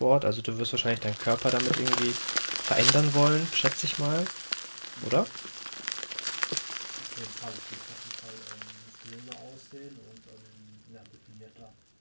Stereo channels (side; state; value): both; inverted; correlation -1.00